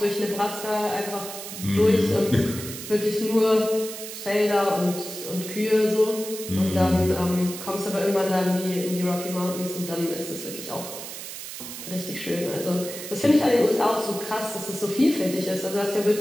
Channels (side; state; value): right; noise; hiss, 10 dB below the sound